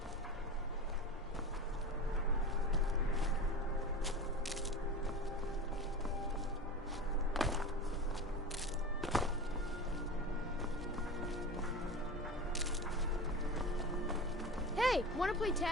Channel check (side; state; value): both; normal; correlation 0.30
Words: Hey, wanna play